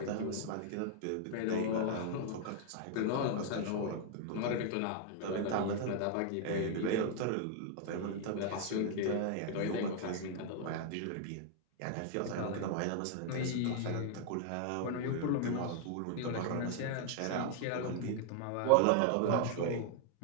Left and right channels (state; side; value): different; both; correlation 0.00